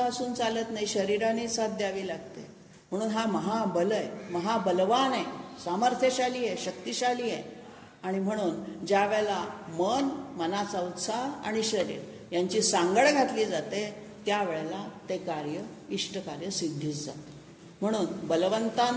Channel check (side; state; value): both; identical; correlation 1.00